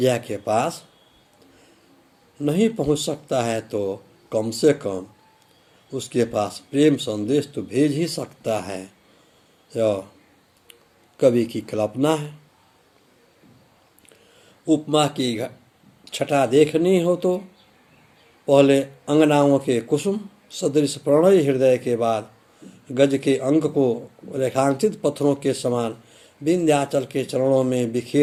के पास नहीं पहुंच सकता है तो कम से कम उसके पास प्रेम संदेश तो भेज ही सकता है। यह कवि की कल्पना है। उपमा की छटा देखनी हो तो पहले अंगनाओं के कुसुम सदृश प्रणय हृदय के बाद गज के अंक को रेखांकित पत्थरों के समान विंध्याचल के चरणों में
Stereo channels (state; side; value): identical; both; correlation 1.00